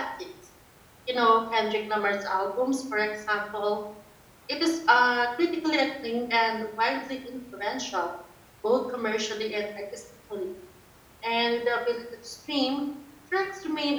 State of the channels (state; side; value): identical; both; correlation 1.00